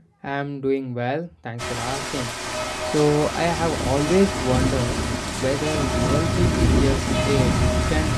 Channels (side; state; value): both; identical; correlation 1.00